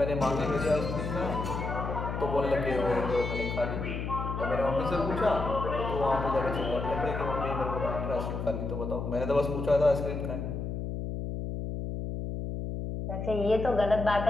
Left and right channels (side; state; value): left; noise; hum, 4 dB below the sound